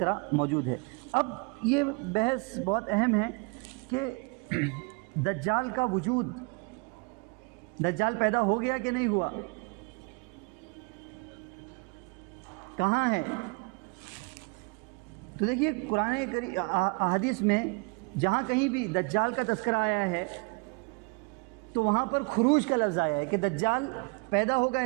موجود ہے. اب یہ بحث بہت اہم ہے کہ دجال کا وجود، دجال پیدا ہو گیا کہ نہیں ہوا، کہاں ہے؟ تو دیکھیے قرآن حدیث میں جہاں کہیں بھی دجال کا تذکرہ آیا ہے تو وہاں پر خروج کا لفظ آیا ہے کہ دجال پیدا ہوگا،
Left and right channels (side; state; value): left; quieter; 30.3 dB